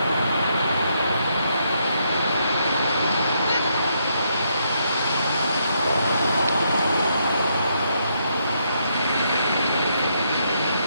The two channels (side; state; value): both; inverted; correlation -0.76